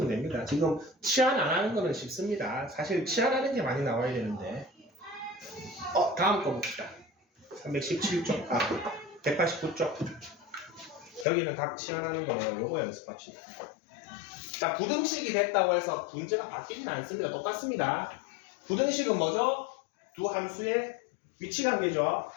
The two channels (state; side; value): drops out; right; at 11.2 s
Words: 됩니다. 지금 치환 안 하는 거는 쉽습니다. 사실 치환하는 게 많이 나와야 되는데 다음 거 봅시다. 317쪽 189쪽 여기는 각 치환하는 거예요. 요거 연습합시다. 자, 부등식이 됐다고 해서 문제가 바뀌진 않습니다. 똑같습니다. 부등식은 뭐죠? 두 함수의 위치 관계죠.